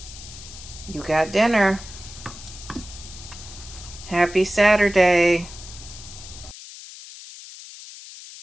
you got dinner. Happy Saturday.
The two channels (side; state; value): left; noise; hiss, 15 dB below the sound